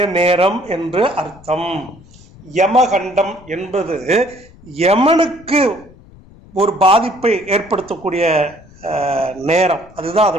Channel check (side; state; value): left; noise; rumble, 23 dB below the sound